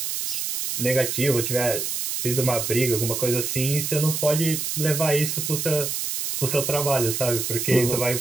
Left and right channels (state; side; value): noise; right; hiss, 2 dB below the sound